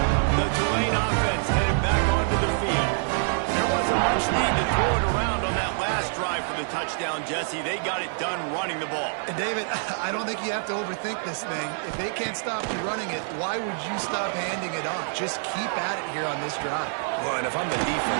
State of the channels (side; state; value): left; silent; 61 dB below the other